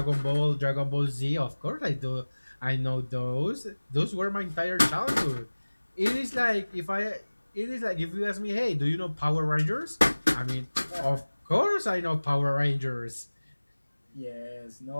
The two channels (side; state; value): both; inverted; correlation -1.00